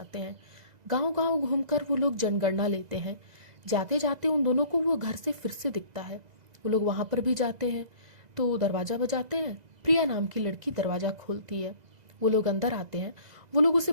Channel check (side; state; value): left; late; 2.0 ms